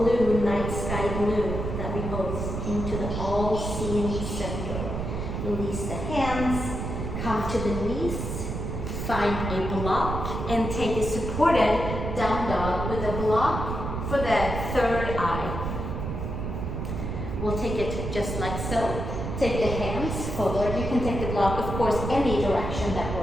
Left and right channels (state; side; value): noise; right; rumble, 4 dB below the sound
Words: night sky blue that we host into the all-seeing center. Release the hands, come to the knees, find a block, and take a supported down dog with a block for the third eye. We'll take it just like so. Take the hands forward. You can take the block, of course, any direction that